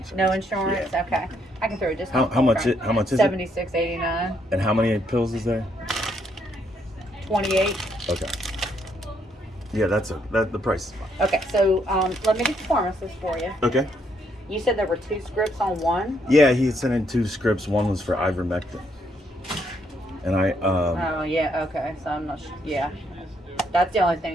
no insurance. Yeah. Okay, I can throw it. Just How much is it? $76.89. And how many pills is there? 28. Okay. Yeah, the price is fine. Okay, so let me get the pharmacist for you. Okay. You said there were 2 scripts on one. Yeah, he had sent in 2 scripts. One was for Ivermectin. And I Oh yeah. Okay. So I'm not. Yeah. That's the only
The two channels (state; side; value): normal; both; correlation 0.73